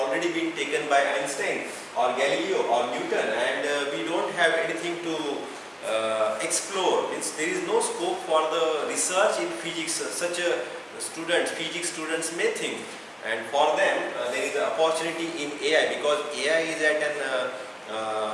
been taken by Einstein or Galileo or Newton, and we don't have anything to explore. Means there is no scope for the research in physics. Such a physics students may think, and for them there is an opportunity in AI, because AI is at an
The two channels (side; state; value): both; identical; correlation 1.00